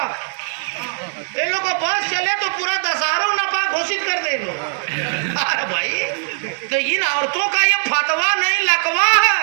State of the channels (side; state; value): left; silent; 66 dB below the other